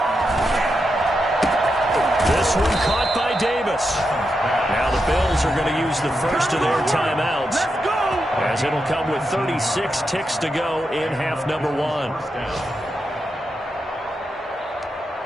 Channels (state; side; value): normal; both; correlation 0.86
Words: This one caught by Davis. Now the Bills are going to use the first of their timeouts, as it'll come with 36 ticks to go in half number 1.